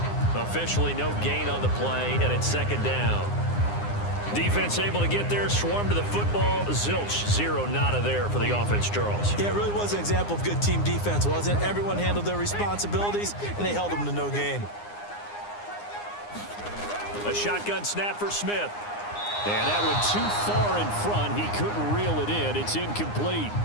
Officially no gain on the play, and it's second down. Defense able to get there, swarm to the football. Zilch, zero, nada there for the offense, Charles. Yeah, it really was an example of good team defense, wasn't it? Everyone handled their responsibilities, and they held them to no gain. A shotgun snap for Smith. And that one too far in front. He couldn't reel it in. It's incomplete.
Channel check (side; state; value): right; late; 9.7 ms